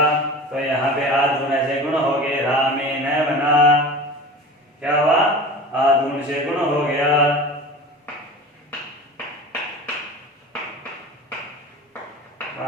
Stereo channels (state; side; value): normal; both; correlation 0.36